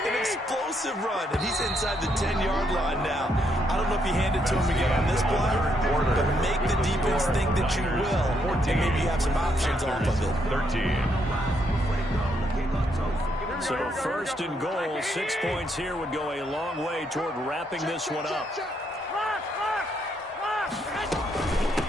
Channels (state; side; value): normal; both; correlation 0.75